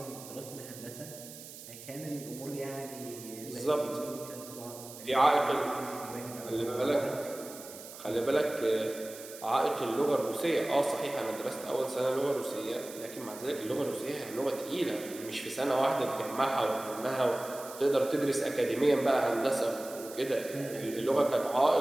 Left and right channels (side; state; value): right; noise; hiss, 15 dB below the sound